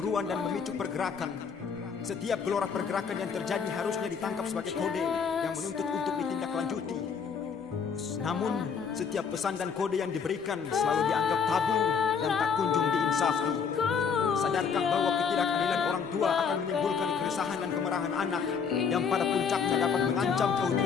dan memicu pergerakan? Setiap gelora pergerakan yang terjadi harusnya ditangkap sebagai kode yang menuntut untuk ditindaklanjuti. Namun, setiap pesan dan kode yang diberikan selalu dianggap tabu dan tak kunjung diinsafi. Sadarkah bahwa ketidakadilan orang tua akan menimbulkan keresahan dan kemarahan anak yang pada puncaknya dapat mengancam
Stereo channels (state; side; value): quieter; right; 6.3 dB